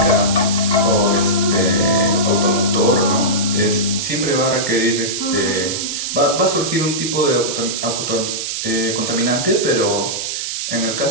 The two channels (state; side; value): noise; right; hiss, 3 dB below the sound